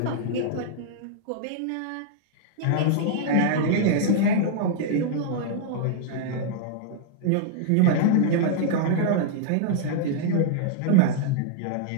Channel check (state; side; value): different; both; correlation -0.01